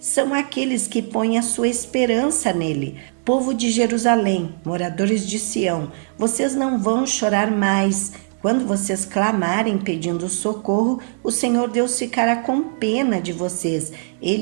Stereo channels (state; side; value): silent; left; digital silence